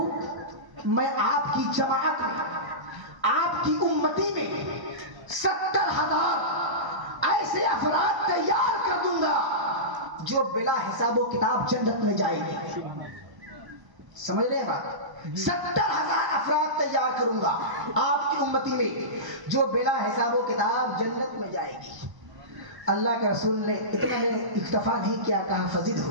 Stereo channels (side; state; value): left; late; 1.0 ms